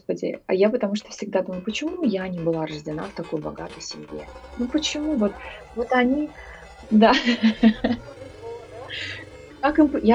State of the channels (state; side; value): identical; both; correlation 1.00